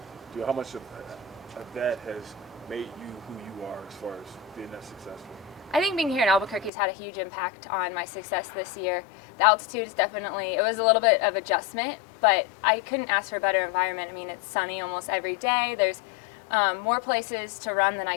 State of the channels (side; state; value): right; drops out; at 6.7 s